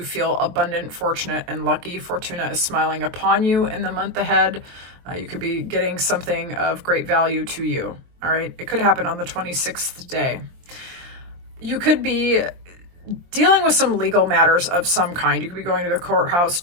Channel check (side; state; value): left; late; 23 ms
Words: feel abundant, fortunate, and lucky. Fortuna is smiling upon you in the month ahead. You could be getting something of great value to you. All right. It could happen on the 26th day. You could be dealing with some legal matters of some kind. You could be going to the courthouse